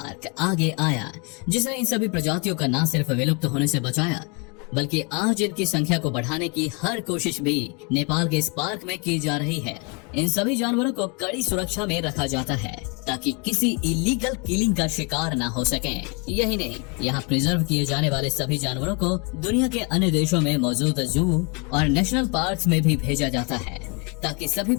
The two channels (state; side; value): quieter; right; 32.5 dB